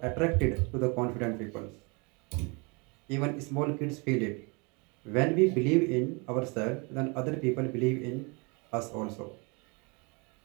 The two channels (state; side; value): quieter; left; 30.9 dB